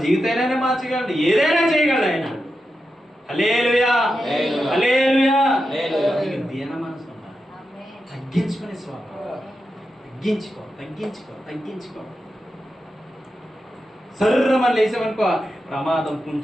జీవితైనా మార్చగలడు, ఏదైనా చేయగలడు ఆయన. హల్లెలూయా, హల్లెలూయా. దీన మనసు ఉండాలి. తగ్గించుకునే స్వభావం. తగ్గించుకో. సర్రమని లేసామనుకో ప్రమాదం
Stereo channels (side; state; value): both; normal; correlation 0.89